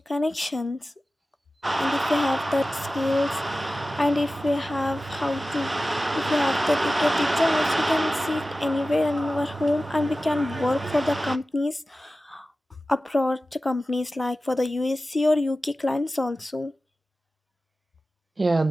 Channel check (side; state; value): both; normal; correlation 0.95